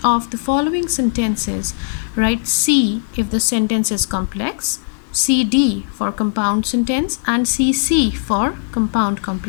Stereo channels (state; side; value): silent; right; digital silence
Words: of the following sentences, write C if the sentence is complex, CD for compound sentence, and CC for compound